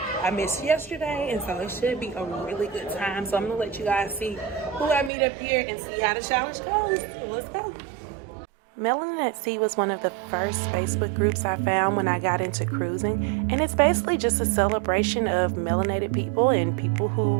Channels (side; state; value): left; drops out; at 5.1 s